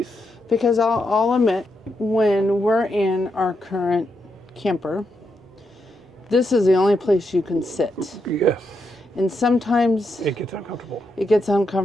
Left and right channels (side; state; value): both; normal; correlation 0.82